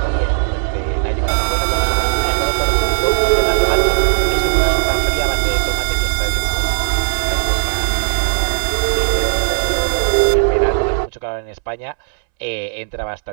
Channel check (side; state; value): left; silent; 68 dB below the other